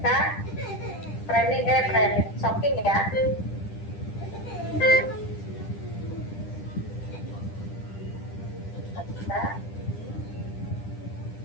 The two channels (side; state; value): right; late; 10 ms